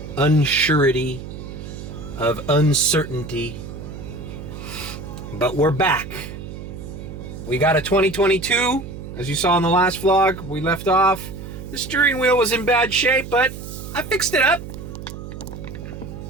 unsurety, of uncertainty. But we're back. We got a 2022, as you saw in the last vlog. We left off. The steering wheel was in bad shape, but I fixed it up.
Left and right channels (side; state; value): right; noise; hum, 11 dB below the sound